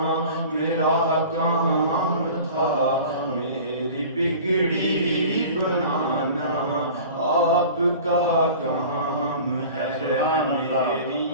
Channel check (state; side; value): inverted; both; correlation -0.41